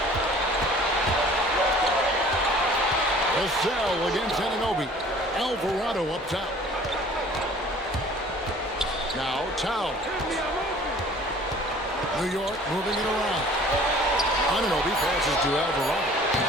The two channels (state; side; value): normal; both; correlation 0.50